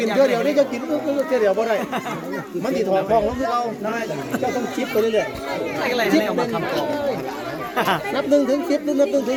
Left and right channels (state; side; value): identical; both; correlation 1.00